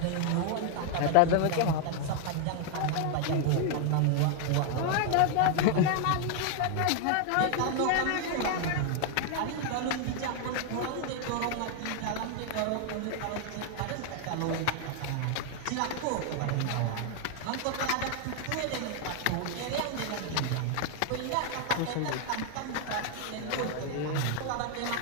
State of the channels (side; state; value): both; different; correlation 0.00